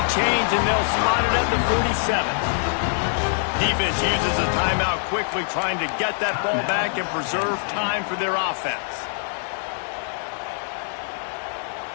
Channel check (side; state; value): right; silent; digital silence